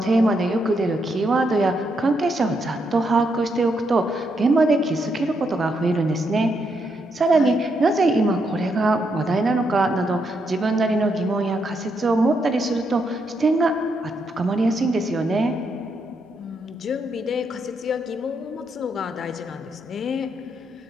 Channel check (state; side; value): normal; both; correlation 0.79